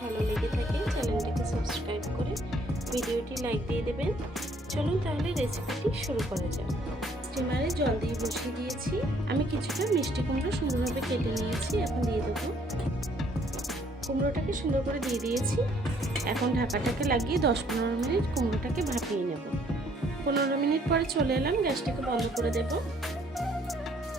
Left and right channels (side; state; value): both; normal; correlation 0.64